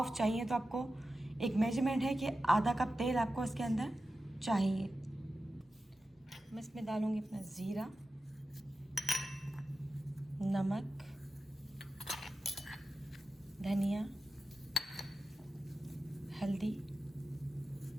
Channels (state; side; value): normal; both; correlation 0.92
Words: चाहिए तो आपको एक मेजरमेंट है कि आधा कप तेल आपको इसके अंदर चाहिए। मैं इसमें डालूँगी अपना ज़ीरा, नमक, धनिया, हल्दी,